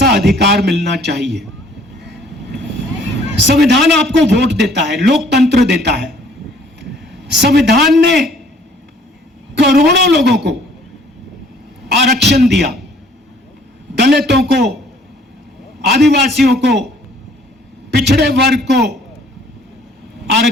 अधिकार मिलना चाहिए। संविधान आपको वोट देता है, लोकतंत्र देता है। संविधान ने करोड़ों लोगों को आरक्षण दिया, दलितों को, आदिवासियों को, पिछड़े वर्ग को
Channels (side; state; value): both; normal; correlation 0.58